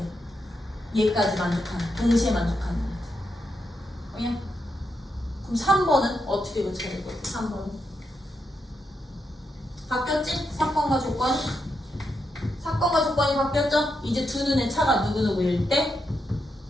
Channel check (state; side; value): normal; both; correlation 0.83